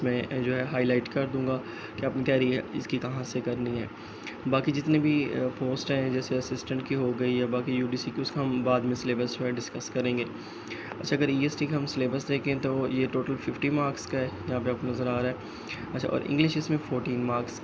میں جو ہے ہائی لائٹ کر دوں گا کہ اپنی تیاری اس کی کہاں سے کرنی ہے۔ باقی جتنے بھی پوسٹ ہیں جیسے اسسٹنٹ کی ہو گئی یا باقی یو ڈی سی کی، اس کا ہم بعد میں سلیبس جو ہے ڈسکس کریں گے۔ اچھا، اگر ای ایس ٹی کا ہم سلیبس دیکھیں تو یہ ٹوٹل 50 مارکس کا ہے، یہاں پہ آپ کو نظر آ رہا ہے۔ اچھا، اور انگلش اس میں 14 مارکس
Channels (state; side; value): identical; both; correlation 1.00